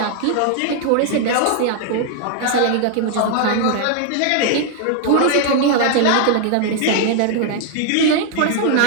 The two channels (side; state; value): both; different; correlation 0.00